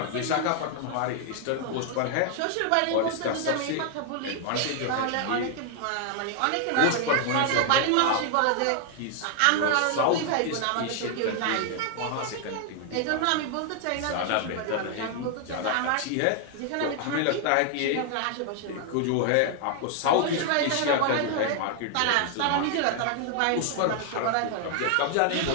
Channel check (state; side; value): different; both; correlation 0.00